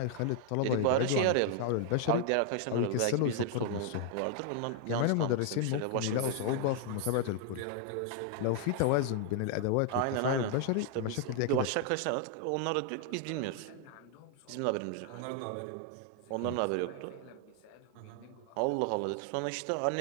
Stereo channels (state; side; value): different; both; correlation 0.00